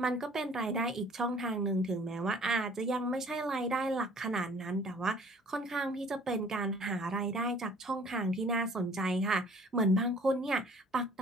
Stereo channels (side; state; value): both; normal; correlation 0.53